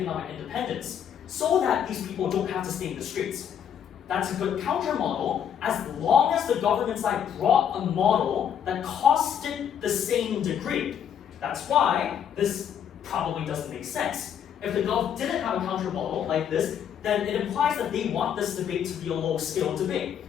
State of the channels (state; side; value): quieter; right; 8.8 dB